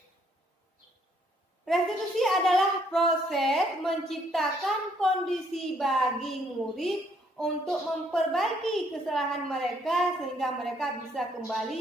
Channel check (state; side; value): normal; both; correlation 0.68